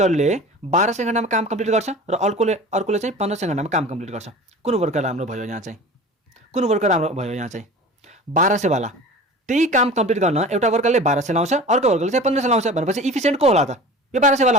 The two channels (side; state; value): both; normal; correlation 0.38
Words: 1200 घन्टामा काम कम्प्लिट गर्छ र अर्कोले चाहिँ 1500 घन्टामा काम कम्प्लिट गर्छ। कुन वर्कर राम्रो भयो यहाँ चाहिँ? कुन वर्कर राम्रो भयो यहाँ चाहिँ? 1200 वाला। त्यही काम कम्प्लिट गर्न एउटा वर्करले 1200 लाउँछ, अर्को वर्करले चाहिँ 1500 लाउँछ भनेपछि इफिसियन्ट को होला त? यो 1200 वाला